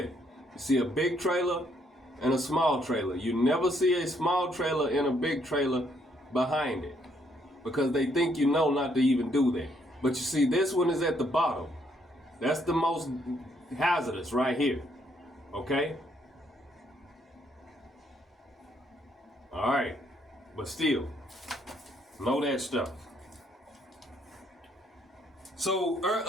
You see a big trailer and a small trailer. You never see a small trailer and a big trailer behind it, because they think you know not to even do that. But you see, this one is at the bottom. That's the most hazardous right here. Okay? All right. But still, know that stuff. So,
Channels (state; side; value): normal; both; correlation 0.71